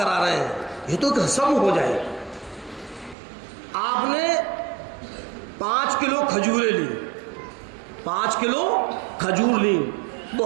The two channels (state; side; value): drops out; left; at 3.2 s